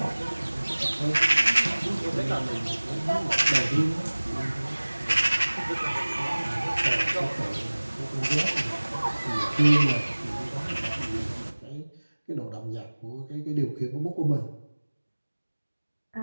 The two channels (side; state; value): both; inverted; correlation -1.00